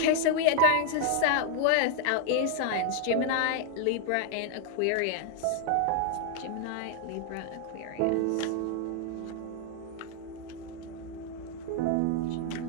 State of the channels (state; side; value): different; both; correlation 0.00